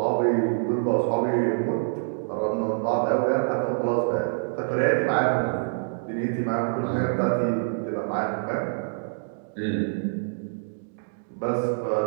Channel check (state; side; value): silent; left; digital silence